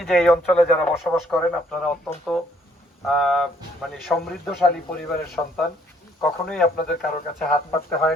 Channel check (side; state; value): both; normal; correlation 0.65